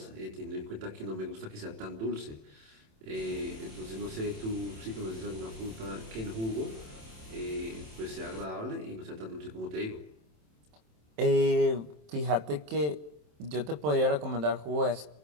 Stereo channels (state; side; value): late; left; 27 ms